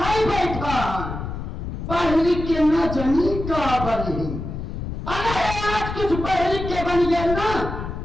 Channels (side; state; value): left; noise; rumble, 6 dB below the sound